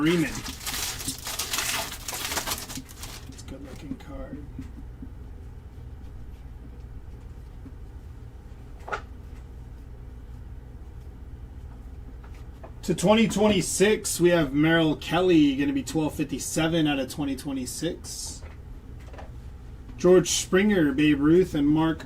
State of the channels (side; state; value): both; identical; correlation 1.00